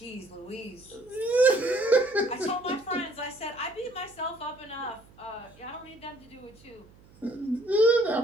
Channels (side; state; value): right; noise; hum, 25 dB below the sound